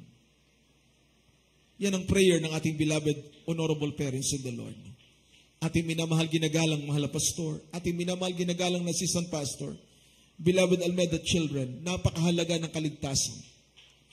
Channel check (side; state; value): both; identical; correlation 1.00